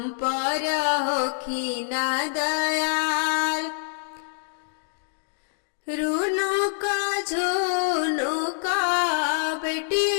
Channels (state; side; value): silent; right; digital silence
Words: पर होखिना दयाल। रुनुक झुनुका बेटी